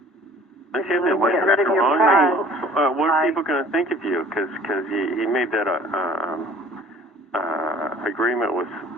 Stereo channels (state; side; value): normal; both; correlation 0.50